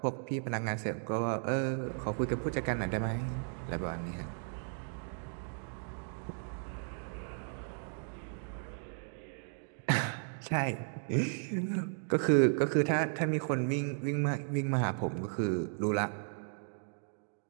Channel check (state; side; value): silent; left; 54 dB below the other